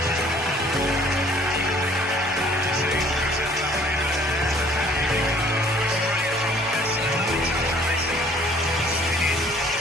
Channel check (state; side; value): normal; both; correlation 0.57